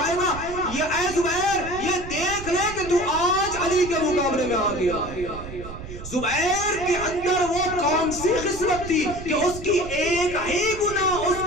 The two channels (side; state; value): right; noise; rumble, 12 dB below the sound